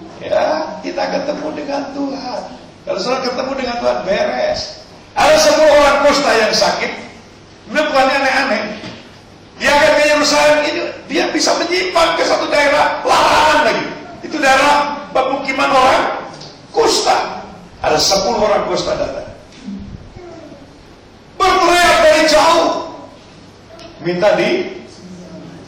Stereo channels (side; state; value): both; identical; correlation 1.00